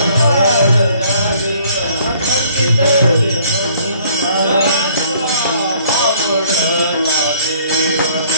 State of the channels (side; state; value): both; inverted; correlation -0.58